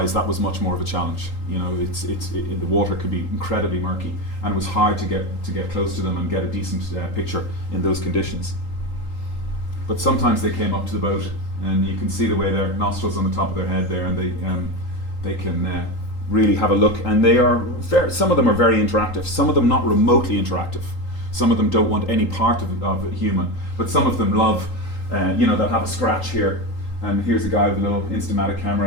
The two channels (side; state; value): right; late; 3.8 ms